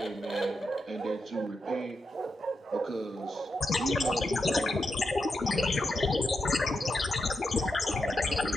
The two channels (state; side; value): normal; both; correlation 0.86